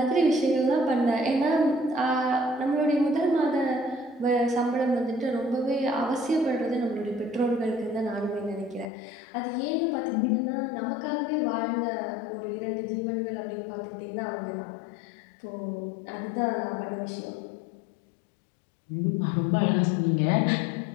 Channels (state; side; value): drops out; right; at 8.9 s